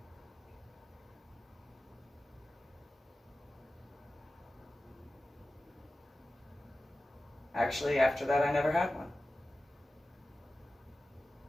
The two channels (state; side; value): normal; both; correlation 0.95